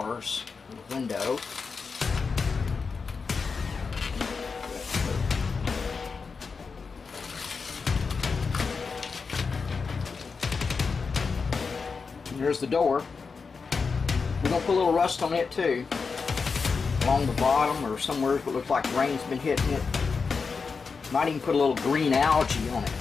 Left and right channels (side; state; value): right; quieter; 5.0 dB